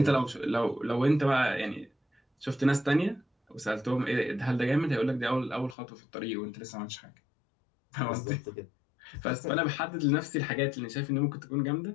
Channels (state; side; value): drops out; right; at 5.8 s